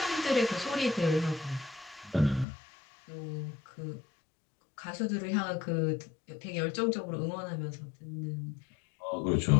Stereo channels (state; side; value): drops out; right; at 2.5 s